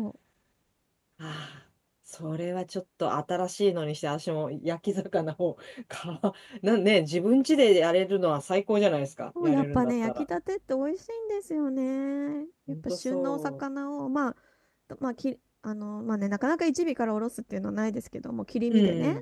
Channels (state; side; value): identical; both; correlation 1.00